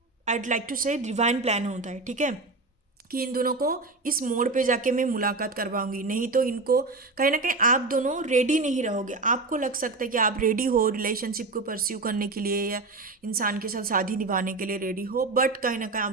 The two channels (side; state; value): left; quieter; 3.6 dB